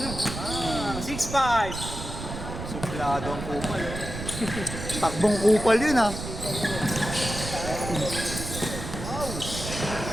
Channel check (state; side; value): noise; right; rumble, 7 dB below the sound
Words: 6-5! Suplado ang kupal. Takbong kupal yun, ha?